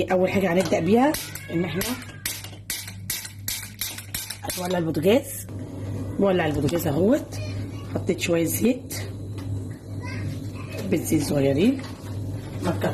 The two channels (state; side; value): identical; both; correlation 1.00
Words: اول حاجه هنبدا بيها ان احنا هنولع البوتاجاز. بولع البوتاجاز اهوت، حطيت شويه زيت، حبه زيت صغيرين ما